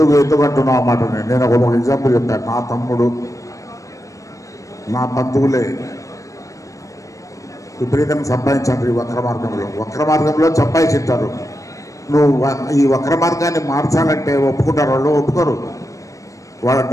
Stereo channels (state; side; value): late; right; 0.16 ms